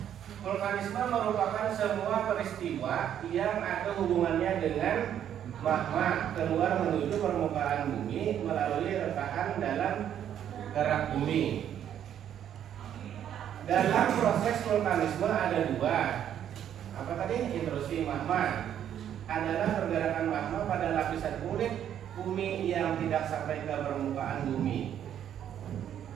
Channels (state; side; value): quieter; left; 10.0 dB